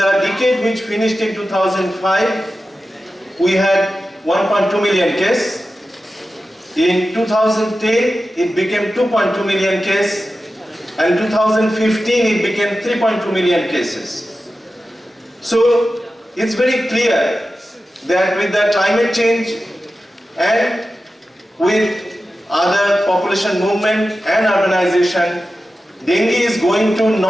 decade which finished in 2005, we had 1.2 million cases. In 2010, it became 2.2 million cases. And 2015, it became 3.2 million cases. So it's very clear that with the climate change and with other population movement and urbanization, dengue is going to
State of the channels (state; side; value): normal; both; correlation 0.93